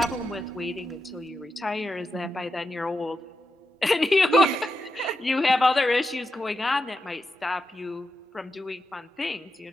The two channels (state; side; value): normal; both; correlation 0.88